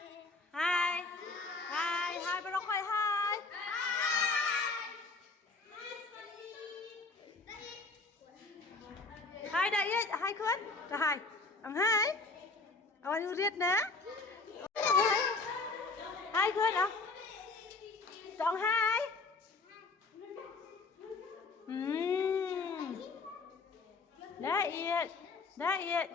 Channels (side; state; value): right; quieter; 3.8 dB